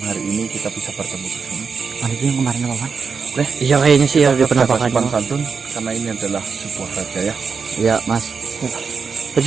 hari ini kita bisa bertemu di sini. Itu yang kemarin apa, Pak? Oke. Iya kayaknya sih ya di penampakannya. Sopan santun karena ini adalah sebuah raja ya. Iya, Mas. Terus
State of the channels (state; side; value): quieter; left; 5.6 dB